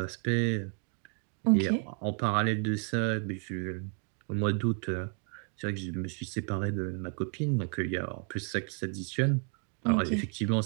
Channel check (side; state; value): left; quieter; 40.0 dB